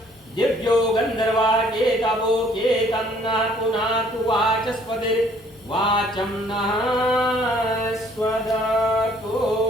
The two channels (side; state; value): both; normal; correlation 0.60